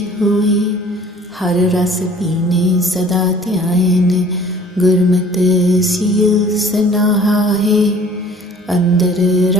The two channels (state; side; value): normal; both; correlation 0.51